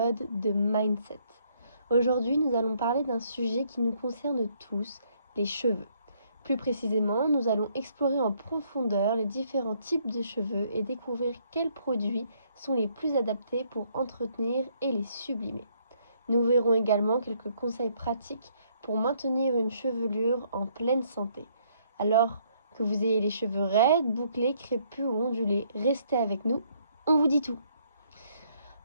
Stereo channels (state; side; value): inverted; both; correlation -0.68